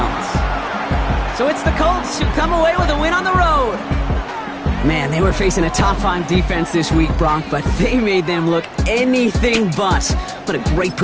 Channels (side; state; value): both; identical; correlation 1.00